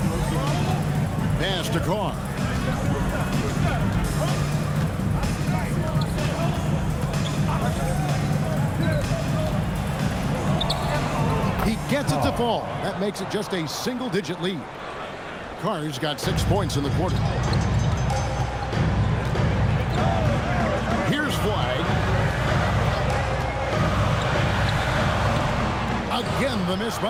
Pass to Carr. He gets it to fall. That makes it just a single-digit lead. Carr's got 6 points in the quarter. Here's Flag. Again, the miss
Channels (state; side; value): identical; both; correlation 1.00